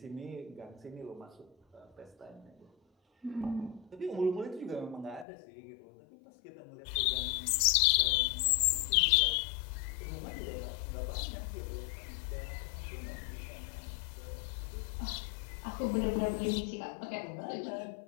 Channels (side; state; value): right; drops out; at 5.2 s